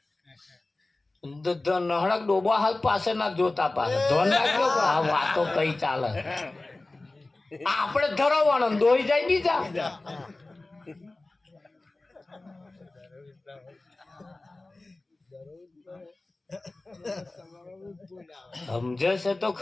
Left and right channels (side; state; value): right; quieter; 3.0 dB